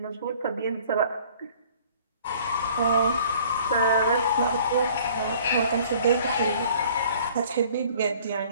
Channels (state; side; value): inverted; both; correlation -0.53